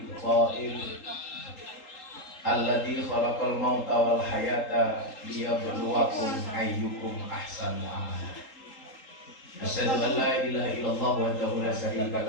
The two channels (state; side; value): late; right; 3.8 ms